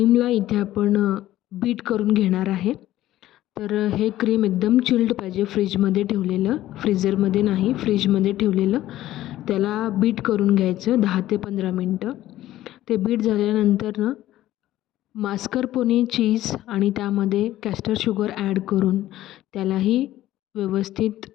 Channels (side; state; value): right; quieter; 14.3 dB